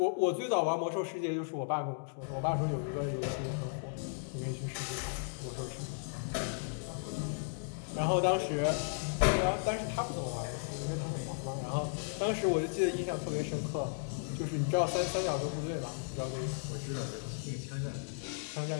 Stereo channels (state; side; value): silent; right; digital silence